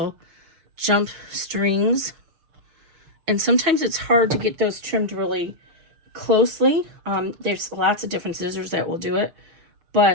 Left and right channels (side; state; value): left; late; 6.7 ms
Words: jump strings, and sometimes it's hard to get those trimmed really closely. There's lots of different scissors that will do it.